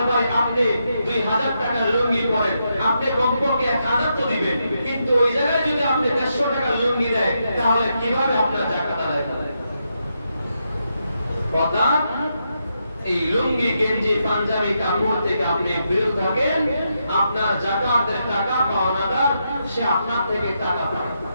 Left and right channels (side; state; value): both; inverted; correlation -0.82